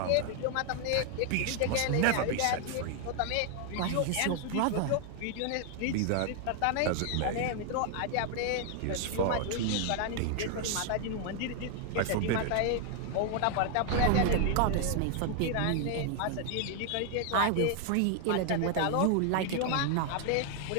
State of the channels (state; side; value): different; both; correlation 0.00